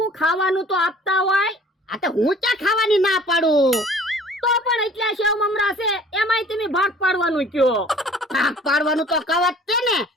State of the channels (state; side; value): normal; both; correlation 0.51